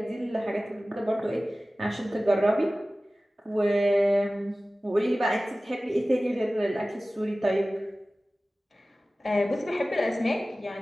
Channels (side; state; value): both; normal; correlation 0.97